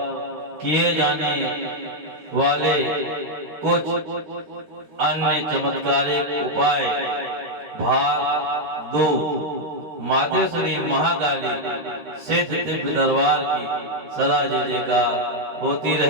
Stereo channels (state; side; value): late; left; 13 ms